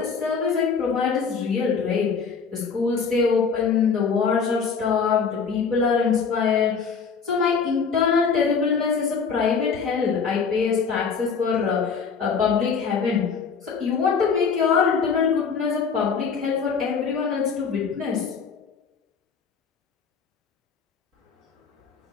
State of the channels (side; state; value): right; quieter; 5.8 dB